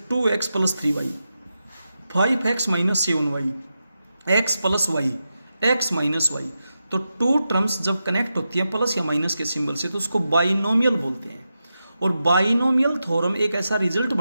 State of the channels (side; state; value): both; inverted; correlation -0.89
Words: 2x plus 3y, 5x minus 7y, x plus Y, x minus Y. तो टू टर्म्स जब कनेक्ट होती हैं प्लस या माइनस के सिंबल से तो उसको बाइनोमियल बोलते हैं। और बाइनोमियल थ्योरम एक ऐसा रिजल्ट